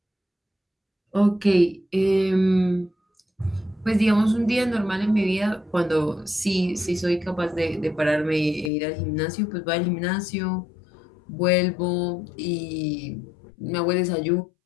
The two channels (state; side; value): drops out; right; at 8.7 s